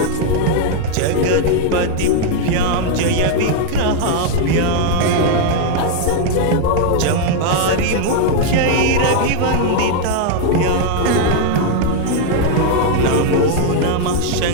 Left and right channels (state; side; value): different; both; correlation 0.00